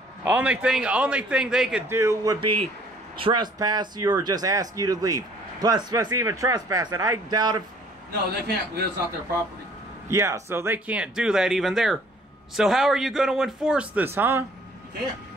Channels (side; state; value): both; normal; correlation 0.57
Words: Only thing they could do would be trespass you or just ask you to leave. Plus even trespass it. I doubt if... No, they can't because it's not their property. Yeah, so they can't do that even there. So how are you going to enforce this, huh? You can't.